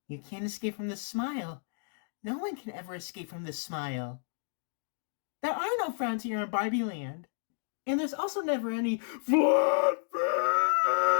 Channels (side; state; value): right; silent; digital silence